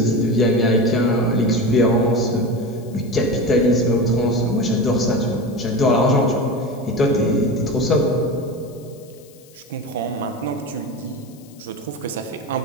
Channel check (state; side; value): noise; left; hiss, 26 dB below the sound